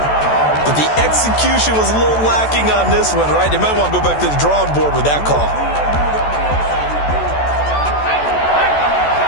But the execution was a little lacking on this one, right? They might want to go back to the drawing board with that call.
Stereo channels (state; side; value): late; right; 14 ms